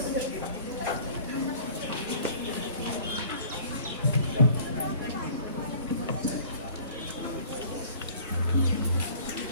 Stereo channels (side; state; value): both; inverted; correlation -0.50